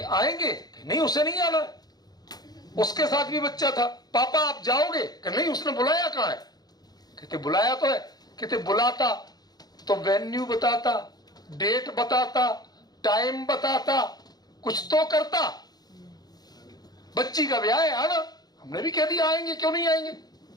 आएंगे? नहीं उसे नहीं आना। उसके साथ भी बच्चा था। पापा आप जाओगे? नहीं उसने बुलाया कहाँ है? कहते बुलाया तो है। कहते बुलाता तो वेन्यू बताता, डेट बताता, टाइम बताता, कुछ तो करता। बच्ची का ब्याह है आना, हमने भी कह दिया आएंगे, क्यों नहीं आएंगे।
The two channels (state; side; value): late; right; 0.19 ms